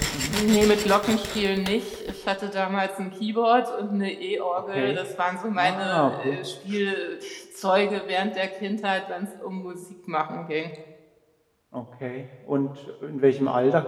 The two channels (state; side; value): identical; both; correlation 1.00